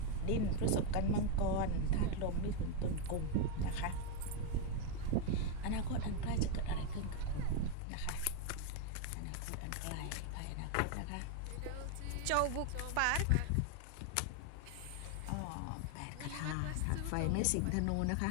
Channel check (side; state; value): both; different; correlation 0.01